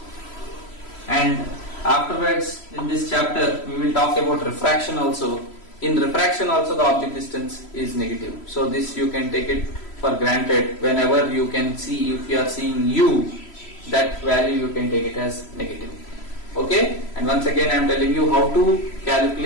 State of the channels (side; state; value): right; late; 3.0 ms